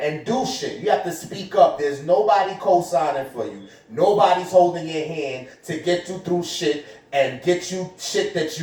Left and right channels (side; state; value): both; identical; correlation 1.00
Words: do shit. You have to speak up. There's nobody co-signing for you. Nobody's holding your hand to get you through shit and get you shit that